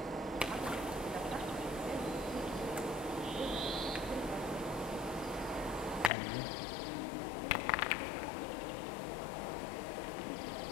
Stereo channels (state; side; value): drops out; right; at 6.1 s